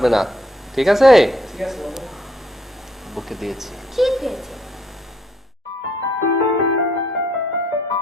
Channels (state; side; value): normal; both; correlation 0.69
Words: না, ঠিক আছে? ঠিক আছে বাবা। বুকে দিয়েছি। ঠিক হয়েছে।